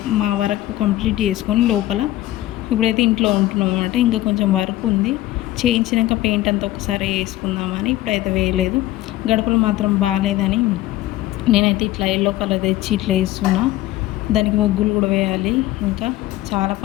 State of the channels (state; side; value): quieter; right; 15.8 dB